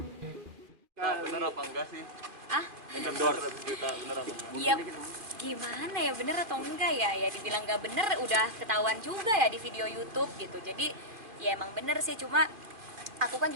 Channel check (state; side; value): late; left; 2.4 ms